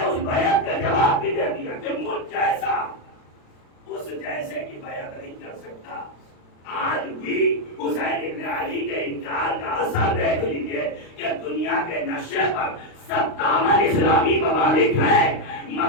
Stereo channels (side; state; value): right; late; 35 ms